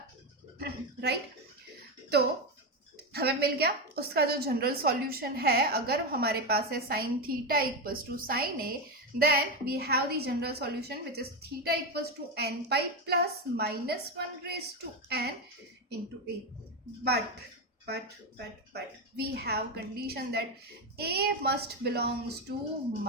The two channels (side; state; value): both; normal; correlation 0.12